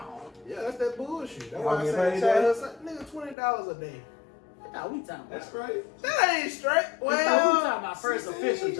Yeah, that's that bullshit. That's why I Y'all say get child, paid nigga, $20 a day. I thought we talking about. That's great. That ain't straight. I thought we Well, talking about first official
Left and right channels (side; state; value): right; drops out; at 3.4 s